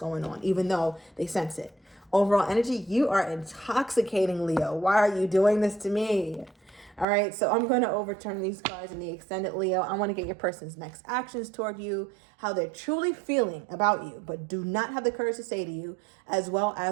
on, even though they sense it. Overall energy, you are intoxicating, Leo. Why are you doing this to me? All right, so I'm going to overturn these cards in the extended, Leo. I want to get your person's next actions toward you, how they're truly feeling about you, but do not have the courage to say to you, as well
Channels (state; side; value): drops out; left; at 7.1 s